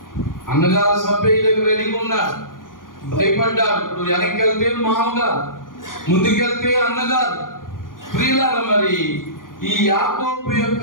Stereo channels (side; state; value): right; late; 0.90 ms